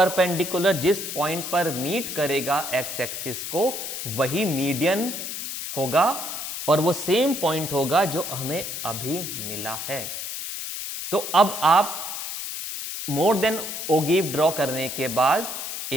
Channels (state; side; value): noise; left; hiss, 6 dB below the sound